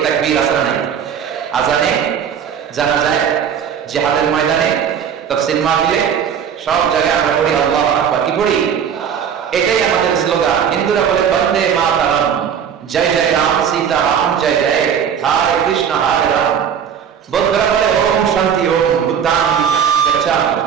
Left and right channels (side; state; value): left; quieter; 8.0 dB